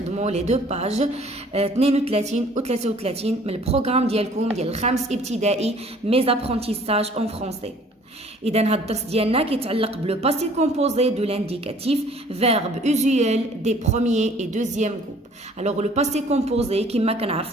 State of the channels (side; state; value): both; normal; correlation 0.54